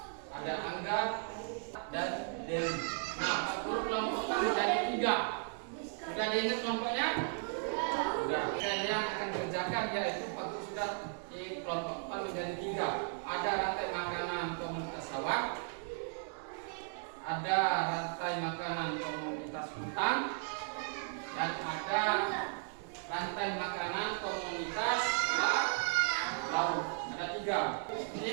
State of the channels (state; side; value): silent; left; 54 dB below the other